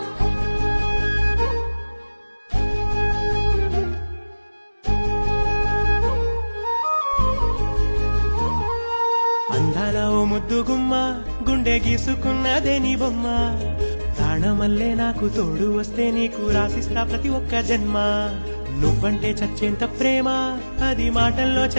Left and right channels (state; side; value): inverted; both; correlation -1.00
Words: అందాల ఓ ముద్దు గుమ్మ గుండె గీసుకున్నదే నీ బొమ్మ ప్రాణమల్లే నాకు తోడు వస్తే నీకు రాసిస్తా ప్రతి ఒక్క జన్మ నువ్వంటే చచ్చేంత ప్రేమ అది మాటల్లో